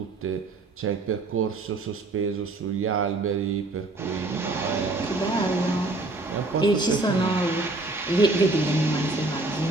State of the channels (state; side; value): quieter; left; 3.0 dB